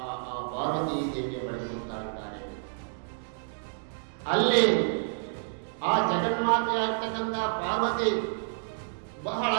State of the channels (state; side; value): silent; left; digital silence